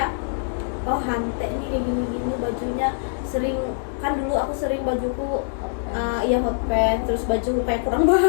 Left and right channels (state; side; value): silent; right; digital silence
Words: oh Hante nih kayak gini-gini bajunya, sering kan dulu aku sering bajuku iya hot pants, terus baju kayak kurang